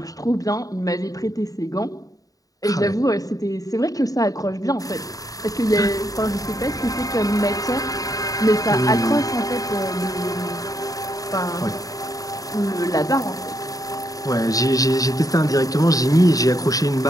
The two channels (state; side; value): late; right; 0.17 ms